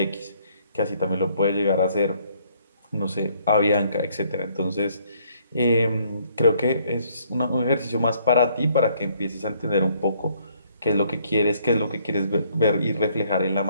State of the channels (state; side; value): inverted; both; correlation -0.66